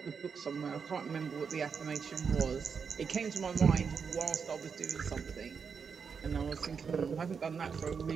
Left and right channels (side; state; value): left; quieter; 6.1 dB